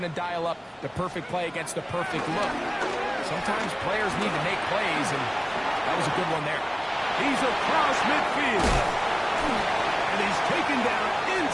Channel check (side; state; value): both; identical; correlation 1.00